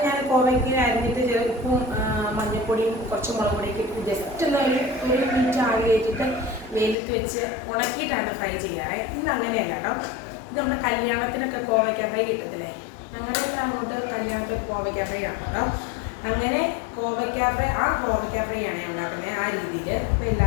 ഞാൻ കോവയ്ക്ക് അരിഞ്ഞിട്ട് ചില ഉപ്പും മഞ്ഞൾപ്പൊടിയും കുറച്ച് മുളക് പൊടിയൊക്കെ ഇട്ട് ജസ്റ്റ് ഒന്ന് ഒരു മിനിറ്റ് ആവി കയറ്റിട്ട് വെയിലത്ത് വെച്ച് ഉണക്കിയിട്ടാണ് ഫ്രൈ ചെയ്യാറ്. ഇന്ന് അങ്ങനെയല്ല കേട്ടോ. ഇത് നമ്മുടെ കല്യാണത്തിനൊക്കെ കോവയ്ക്ക ഫ്രൈ കിട്ടത്തില്ലേ, അങ്ങനെയൊക്കെ അങ്ങോട്ട് കല്യാണത്തിൽ കോവയ്ക്ക ഫ്രൈ ആണ് കേട്ടോ. അങ്ങനെ കോവയ്ക്ക ഫ്രൈ ആണ് ഞാൻ ഉണ്ടാക്കുന്നത് ആ രീതിയിൽ. അപ്പോൾ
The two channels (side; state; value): right; drops out; at 7.0 s